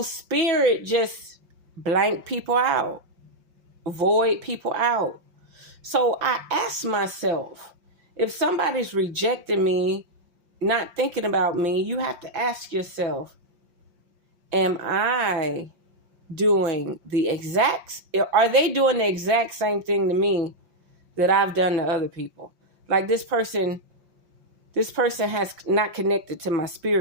spirit just blank people out, void people out. So I asked myself, if somebody's rejecting me, not thinking about me, you have to ask yourself, am I doing are they doing the exact same thing to me that I've done to other people? Like this person has not connected to my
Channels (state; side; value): late; left; 5.7 ms